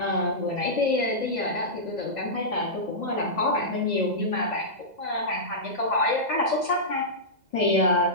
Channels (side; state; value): left; late; 2.0 ms